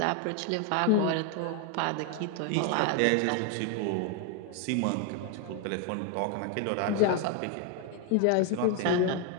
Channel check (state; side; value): different; both; correlation 0.01